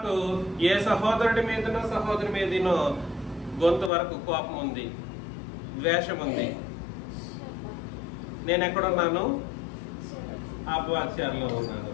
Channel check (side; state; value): right; drops out; at 3.9 s